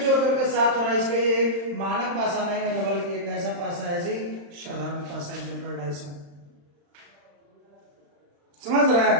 करके 7 हो रहा है। इसलिए ये मानक पाशा नहीं है, बल्कि एक ऐसा पाशा है जी साधारण पाशा, जनरल डाइस में। समझ रहे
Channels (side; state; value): left; late; 35 ms